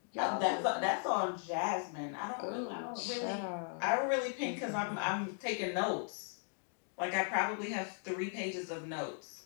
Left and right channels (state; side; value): silent; right; 53 dB below the other